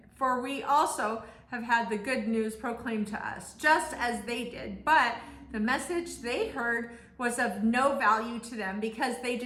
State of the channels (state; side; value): identical; both; correlation 1.00